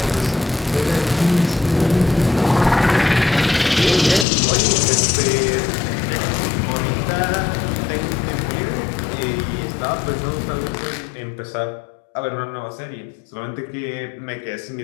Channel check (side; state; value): right; drops out; at 4.2 s